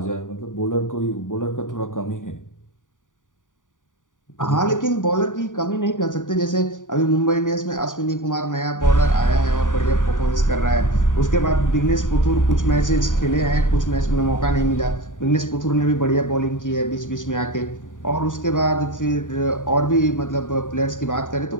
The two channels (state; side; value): late; right; 0.88 ms